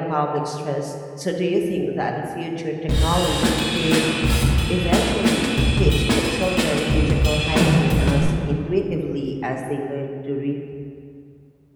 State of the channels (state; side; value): identical; both; correlation 1.00